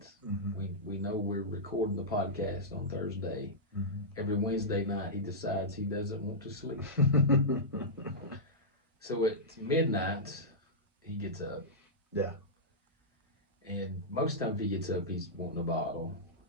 Mm-hmm. We know we're recording the podcast on Thursday. Mm-hmm. Every Wednesday night, he decides he doesn't want to sleep. So at midnight, he gets up. Yeah. And most times he gets up, he's wanting a bottle.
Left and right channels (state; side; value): normal; both; correlation -0.12